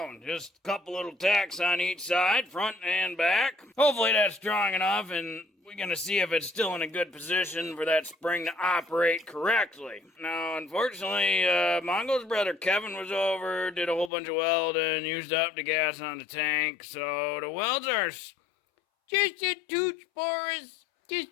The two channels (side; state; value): right; drops out; at 14.1 s